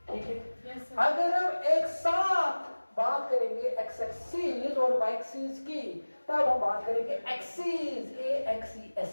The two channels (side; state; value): both; inverted; correlation -1.00